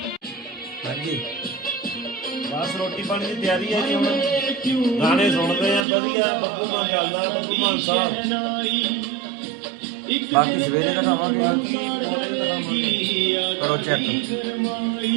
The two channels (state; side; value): drops out; left; at 5.9 s